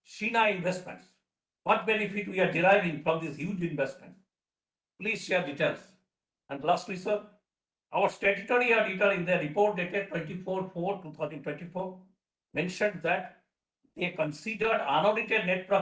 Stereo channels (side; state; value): both; identical; correlation 1.00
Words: Sheena Investments. What benefit we are deriving from this huge investment? Please share details. And lastly, sir, our statutory auditor in their report dated 24/4/2024 mentioned that they considered unaudited net